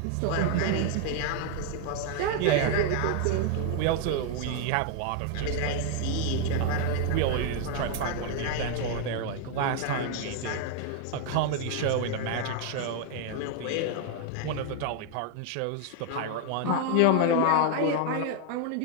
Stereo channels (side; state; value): both; different; correlation 0.00